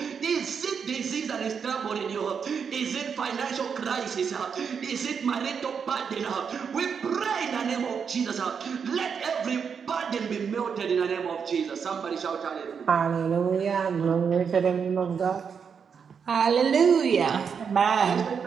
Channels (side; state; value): left; quieter; 6.5 dB